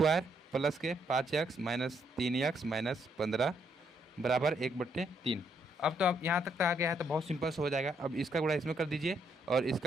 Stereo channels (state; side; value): normal; both; correlation 0.73